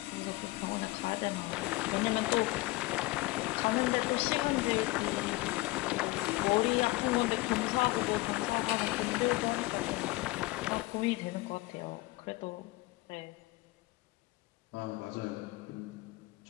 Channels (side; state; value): right; quieter; 20.6 dB